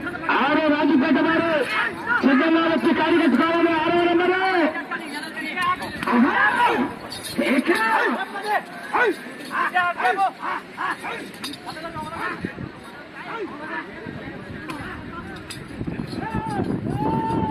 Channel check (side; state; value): both; identical; correlation 1.00